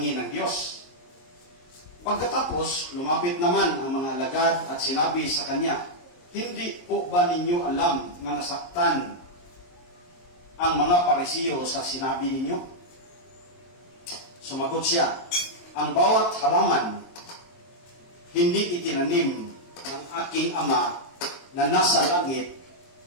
ng Diyos." Pagkatapos, lumapit naman ang mga alagad at sinabi sa kanya, "Hindi po ba ninyo alam na nasaktan ang mga Parisiyo sa sinabi ninyo?" Sumagot siya, "Ang bawat halaman hindi itinanim ng aking Ama na nasa langit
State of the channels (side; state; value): right; late; 23 ms